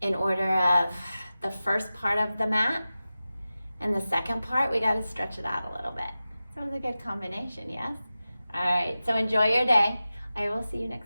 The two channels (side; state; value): both; inverted; correlation -0.94